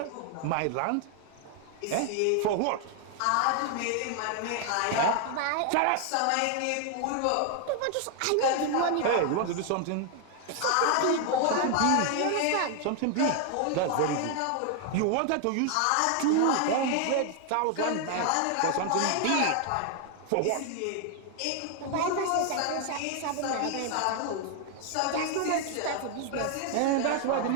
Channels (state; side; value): different; both; correlation 0.00